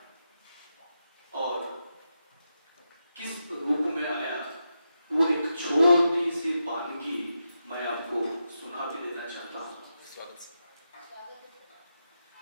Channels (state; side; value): inverted; both; correlation -0.87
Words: और किस रूप में आया वो एक छोटी सी वानगी मैं आपको सुना भी देना चाहता हूँ।